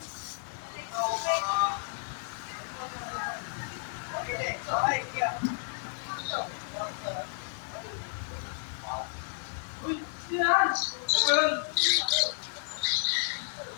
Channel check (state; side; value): silent; right; 57 dB below the other